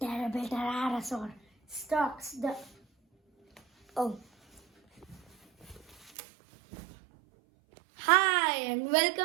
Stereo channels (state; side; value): drops out; left; at 6.1 s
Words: terrible pterosaur stalks the... Oh. Hi and